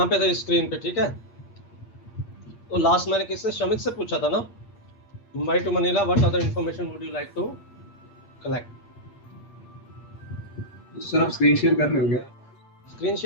पे थे स्क्रीन पे, ठीक है। तो लास्ट मैंने किससे, शमित से पूछा था ना, Mumbai to Manila what other information would you like to collect. Sir आप स्क्रीन शेयर कर रहे हो क्या? स्क्रीन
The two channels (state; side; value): late; right; 8.4 ms